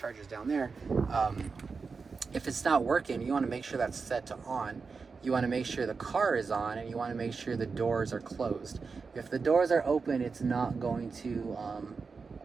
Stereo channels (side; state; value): left; quieter; 4.8 dB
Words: is down there. If it's not working, you want to make sure that's set to on. You want to make sure the car is on, and you want to make sure the doors are closed. If the doors are open, it's not going to